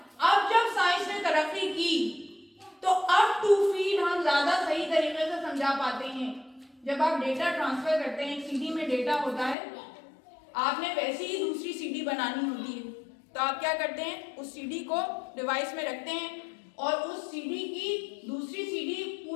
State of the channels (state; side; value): drops out; right; at 9.6 s